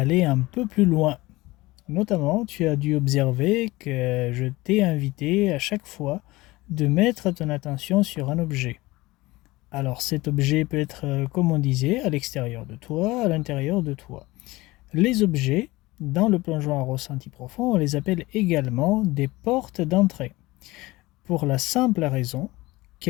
un peu plus loin. Notamment, tu as dû observer que je t'ai invité à chaque fois de mettre ton attention sur un objet. Alors cet objet peut être, comme on disait, à l'extérieur de toi, à l'intérieur de toi. Les objets, dans le plongeon en ressenti profond, on les appelle également des portes d'entrée, pour la simple raison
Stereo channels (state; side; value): quieter; right; 20.3 dB